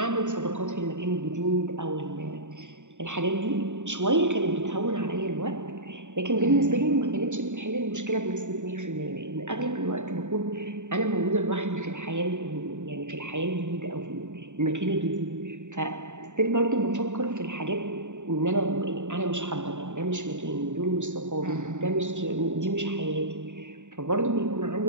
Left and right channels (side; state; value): left; late; 0.84 ms